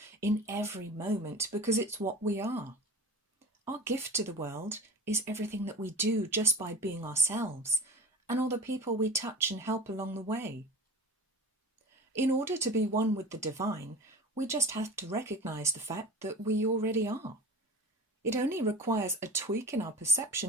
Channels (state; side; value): normal; both; correlation 0.37